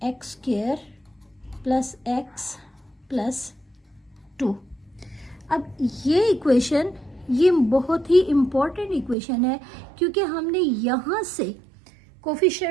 X square plus X plus 2। अब ये इक्वेशन, ये बहुत ही इम्पॉर्टेंट इक्वेशन है, क्योंकि हमने यहाँ से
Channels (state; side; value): drops out; left; at 9.2 s